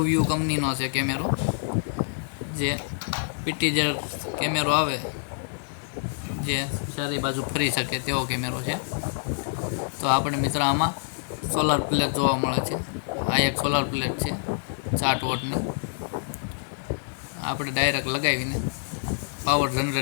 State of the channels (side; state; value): right; silent; 60 dB below the other